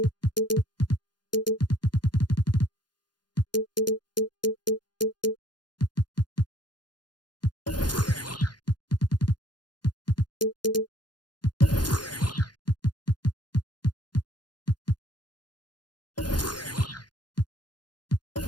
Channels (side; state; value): right; late; 0.70 ms